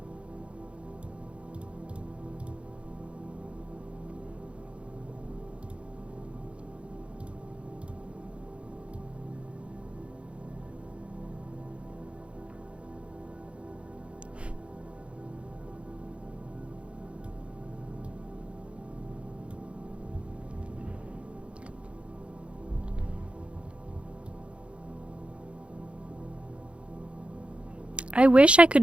I wish I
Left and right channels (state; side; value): late; left; 0.059 ms